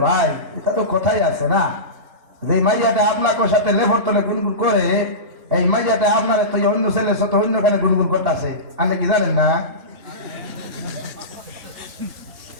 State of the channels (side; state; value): left; late; 2.8 ms